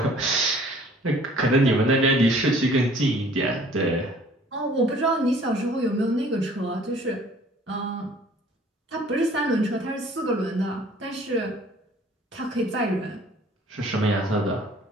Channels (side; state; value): both; normal; correlation 0.53